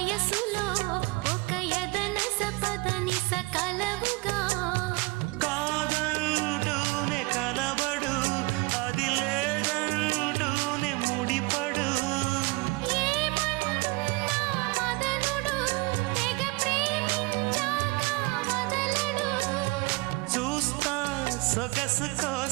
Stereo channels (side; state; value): left; quieter; 25.0 dB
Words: ఒక యదనస పదనిస కలవుగా కాదంటూనే కలబడు అది లేదంటూనే ముడిపడు ఏమంటున్నా మదనుడు తెగ ప్రేమించాక వదలడు చూస్తా సొగసు